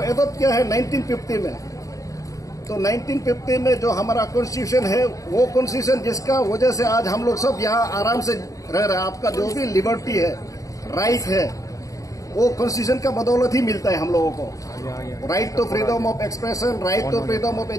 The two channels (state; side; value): late; right; 0.16 ms